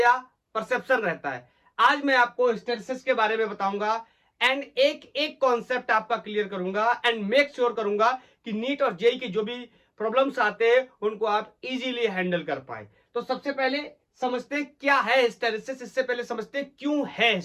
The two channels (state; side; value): identical; both; correlation 1.00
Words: परसेप्शन रहता है। आज मैं आपको हिस्टेरेसिस के बारे में बताऊंगा एंड एक एक कॉन्सेप्ट आपका क्लियर करूंगा एंड मेक श्योर करूंगा कि नीट और जेई की जो भी प्रॉब्लम्स आते हैं उनको आप इजीली हैंडल कर पाए। तो सबसे पहले समझते हैं क्या है हिस्टेरेसिस। इससे पहले समझते हैं क्यों है